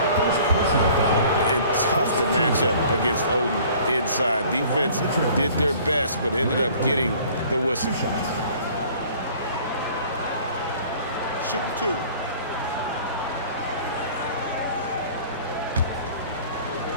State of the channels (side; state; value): both; inverted; correlation -0.51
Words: And tough to match up against Oden inside. Defense did their best, but ended up getting the whistle. Shooting 2.